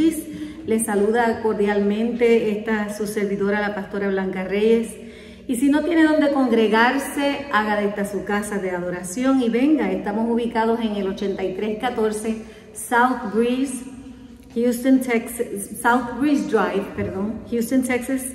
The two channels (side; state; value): both; identical; correlation 1.00